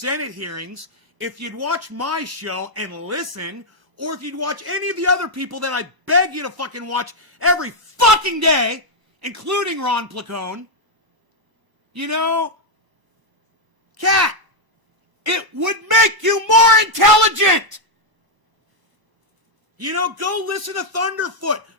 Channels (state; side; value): late; left; 1.0 ms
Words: hearings, if you'd watch my show and listen, or if you'd watch any of the other people that I beg you to fucking watch every fucking day, including Ron Placone, you know, Kat, it would make you more intelligent. You know, go listen to Thunderfoot.